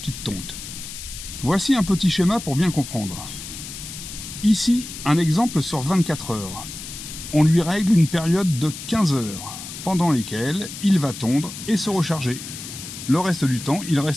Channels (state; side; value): noise; left; hiss, 11 dB below the sound